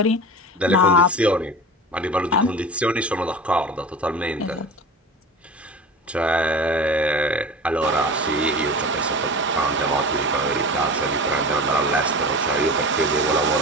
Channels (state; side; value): normal; both; correlation 0.33